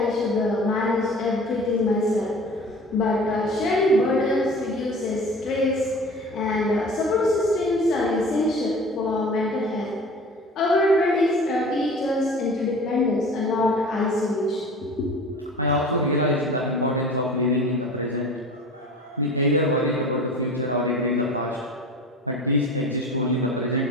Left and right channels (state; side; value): normal; both; correlation 0.40